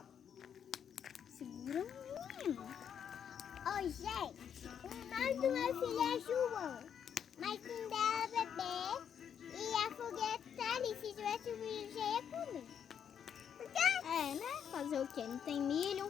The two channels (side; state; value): right; quieter; 8.2 dB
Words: Segura, menino. Oi, gente. O nome do meu filho é João. Mas quem dela é bebê. E a foguete tá ali. Se tivesse milho, já ia comer. É, né? Fazer o quê? Não tem milho.